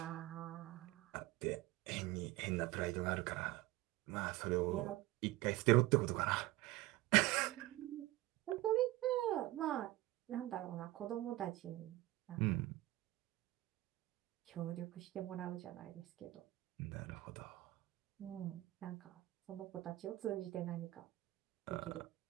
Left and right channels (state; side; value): quieter; left; 17.7 dB